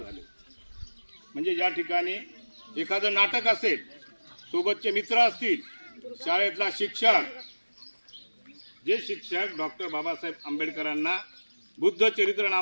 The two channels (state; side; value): inverted; both; correlation -1.00